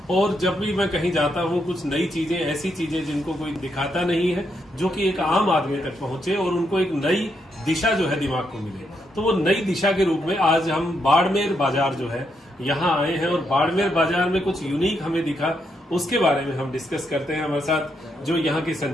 और जब भी मैं कहीं जाता हूँ कुछ नई चीजें, ऐसी चीजें जिनको कोई दिखाता नहीं है, जो कि एक आम आदमी तक पहुंचे और उनको एक नई दिशा जो है दिमाग को मिले, तो वो नई दिशा के रूप में आज हम बाड़मेर बाजार जो है यहाँ आए हैं और बाड़मेर बाजार में कुछ यूनिक हमें दिखा, उसके बारे में हम डिस्कस करते हैं। हमारे साथ जो यहाँ के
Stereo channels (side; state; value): both; normal; correlation 0.79